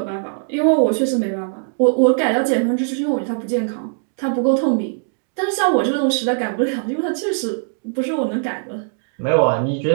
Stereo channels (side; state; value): left; silent; digital silence